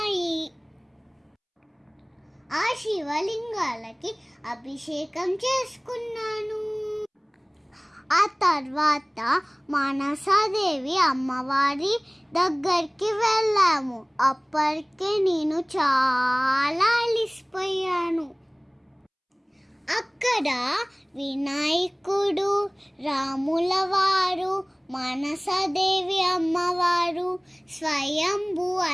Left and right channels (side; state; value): both; identical; correlation 1.00